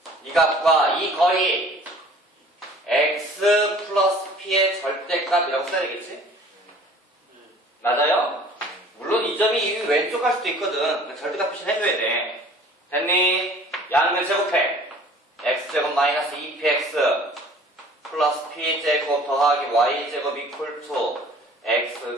이 값과 이 거리 x 플러스 p의 절대값이라고 써야 되겠지? 맞아요? 물론 이 점이 이 왼쪽 갈 수도 있거든. 절대값 표시를 해줘야 돼. 됐니? 양면 제곱해. x제곱 마이너스 2px 플러스 p제곱 더하기 y제곱 이퀄 투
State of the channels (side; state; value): both; normal; correlation 0.49